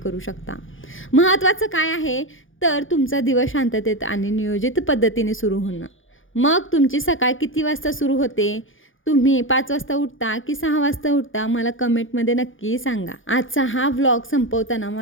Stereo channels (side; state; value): right; late; 0.58 ms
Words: शकता. महत्त्वाचं काय आहे तर तुमचा दिवस शांततेत आणि नियोजित पद्धतीने सुरू होणं. मग तुमची सकाळ किती वाजता सुरू होते? तुम्ही 5 वाजता उठता की 6 वाजता उठता? मला कमेंटमध्ये नक्की सांगा. आजचा हा व्लॉग संपवताना